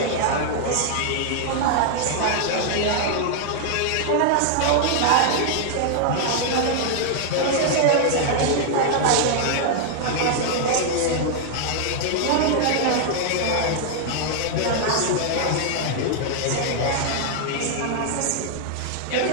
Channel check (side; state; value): both; different; correlation 0.00